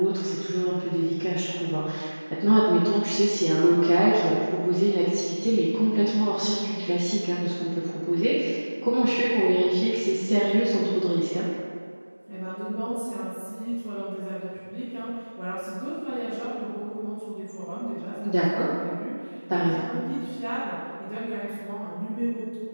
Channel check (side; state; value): both; inverted; correlation -1.00